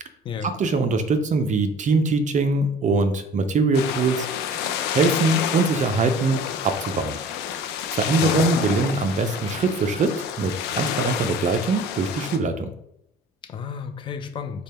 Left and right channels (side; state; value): both; normal; correlation 0.46